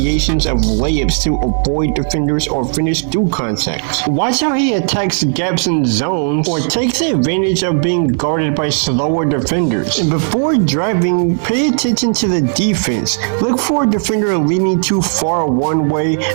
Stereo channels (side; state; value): left; silent; 67 dB below the other